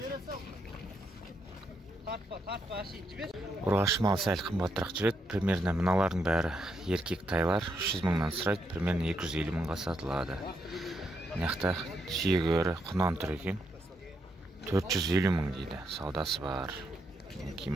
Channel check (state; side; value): normal; both; correlation 0.79